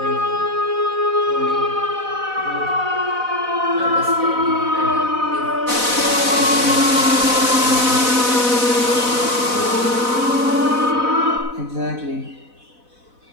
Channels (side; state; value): left; late; 4.0 ms